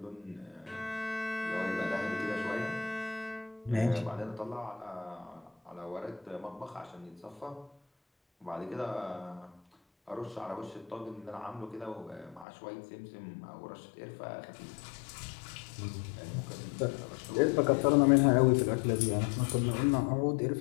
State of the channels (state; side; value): drops out; right; at 12.5 s